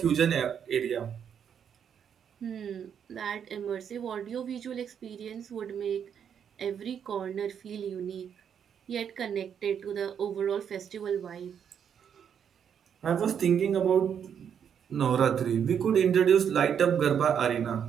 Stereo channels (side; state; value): left; quieter; 8.1 dB